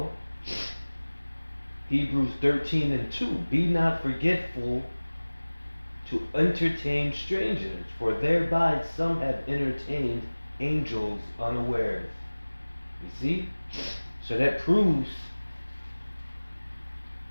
Hebrews 13:2. Be not forgetful to entertain strangers, for thereby some have entertained angels unawares. You see? So that proves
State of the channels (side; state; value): both; inverted; correlation -1.00